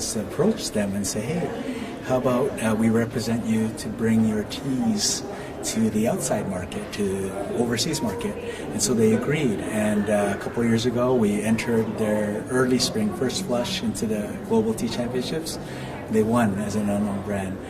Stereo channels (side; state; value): both; identical; correlation 1.00